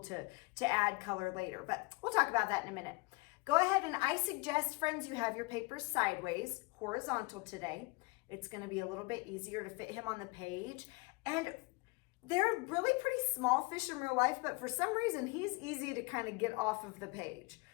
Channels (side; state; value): right; quieter; 26.3 dB